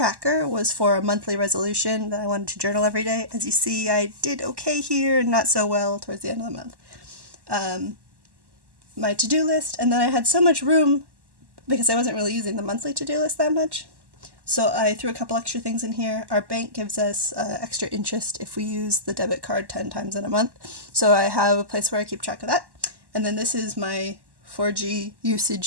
was for a monthly resolution that I wanted to journal every day. As you see, I did okay here and not so well towards the end of the month. My to-do list, and then I had so much room because I wasn't really using the monthly to-do list that much. So I threw a couple extra things in here. Our bank gives us extra interest if we use the debit card 10 times in a month. So I have a place where I keep track of that. And then this is my 4G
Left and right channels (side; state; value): left; late; 1.1 ms